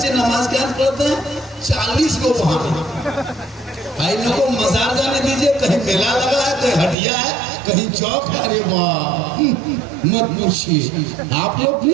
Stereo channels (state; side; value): drops out; left; at 7.0 s